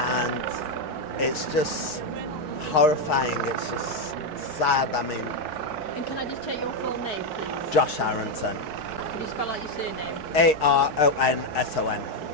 it's just horrifying. It's just sad. I mean, and can I just take your full name, please? Josh Aronson. Can you spell out your surname? Aronson.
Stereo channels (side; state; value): right; late; 4.6 ms